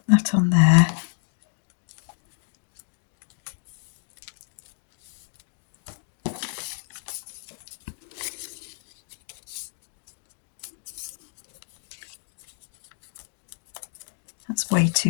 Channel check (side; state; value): right; silent; 59 dB below the other